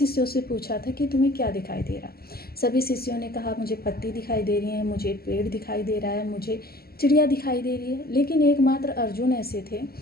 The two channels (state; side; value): late; right; 0.45 ms